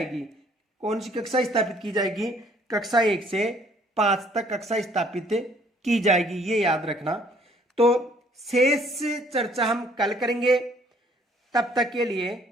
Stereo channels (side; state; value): both; normal; correlation 0.60